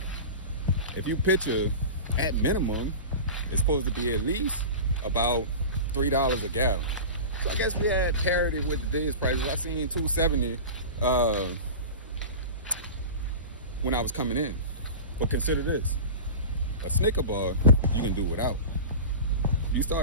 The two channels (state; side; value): inverted; both; correlation -0.31